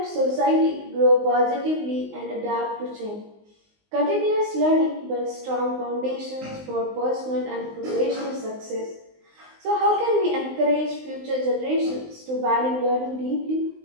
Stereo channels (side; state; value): left; late; 19 ms